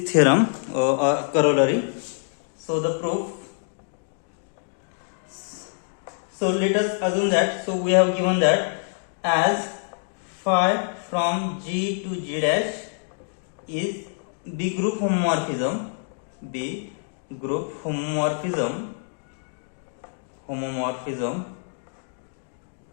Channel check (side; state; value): right; silent; digital silence